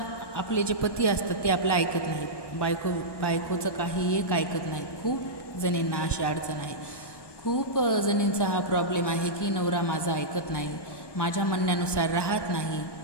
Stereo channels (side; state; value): right; late; 1.2 ms